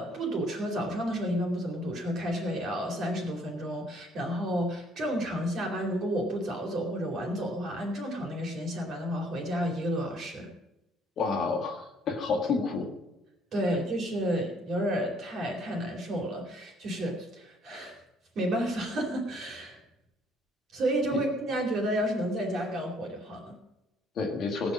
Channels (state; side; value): normal; both; correlation 0.63